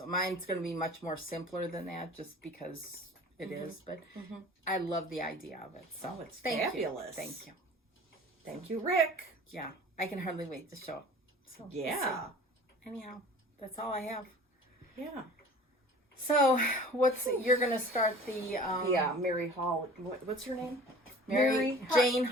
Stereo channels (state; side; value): normal; both; correlation 0.44